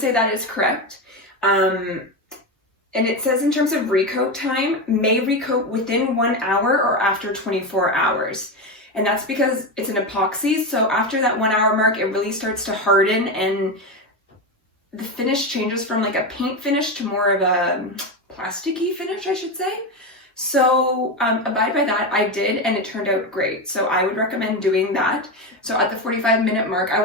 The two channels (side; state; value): both; normal; correlation 0.15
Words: say that is correct. And it says in terms of recoat time, may recoat within 1 hour or after 24 hours. And that's because it's an epoxy, so after that 1 hour mark, it really starts to harden and the finish changes from like a paint finish to more of a plasticky finish, I should say. So abide by that. I did, and it turned out great. So I would recommend doing that. So at the 45-minute mark, I